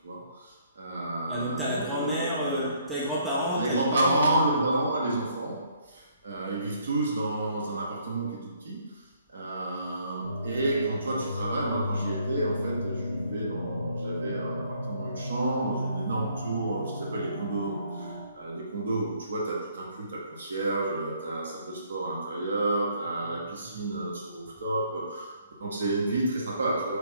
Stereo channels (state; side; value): inverted; both; correlation -0.66